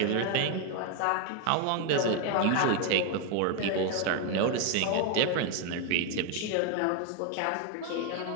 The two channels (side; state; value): both; different; correlation 0.01